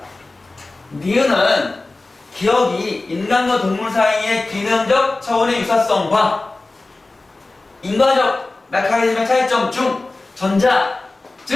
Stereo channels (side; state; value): right; quieter; 3.2 dB